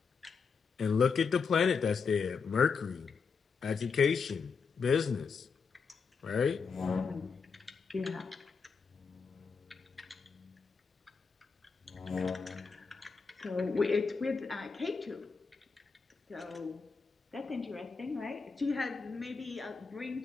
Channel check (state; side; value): quieter; right; 5.3 dB